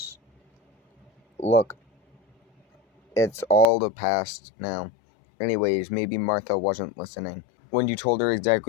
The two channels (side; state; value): right; drops out; at 3.7 s